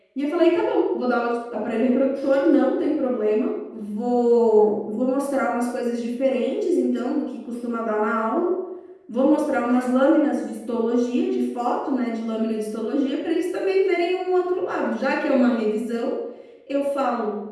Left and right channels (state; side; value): identical; both; correlation 1.00